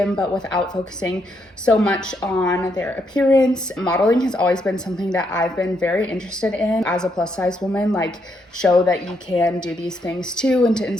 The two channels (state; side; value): normal; both; correlation 0.77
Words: but without focusing so much on their appearance. Modeling has always been something that I've been very interested in as a plus size woman, show that you can do these things too, and to